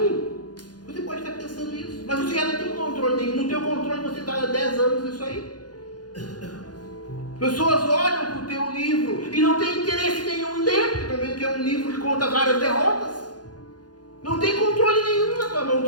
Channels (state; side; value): late; right; 0.69 ms